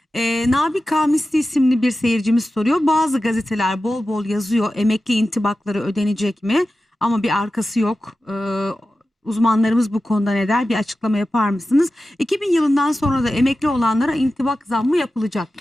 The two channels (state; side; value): normal; both; correlation 0.93